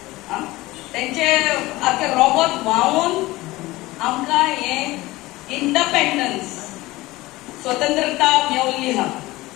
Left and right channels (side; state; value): right; quieter; 19.3 dB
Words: त्यांचे आखे रगत व्हांवून आमकां हे इंडिपेंडन्स स्वतंत्रता मेळिल्ली आहा.